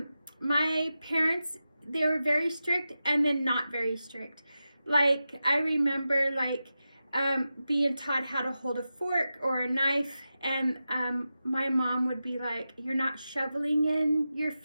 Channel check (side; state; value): both; inverted; correlation -0.92